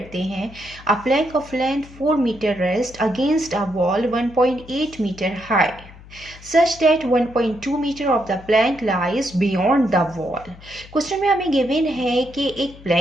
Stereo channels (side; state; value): left; noise; hum, 20 dB below the sound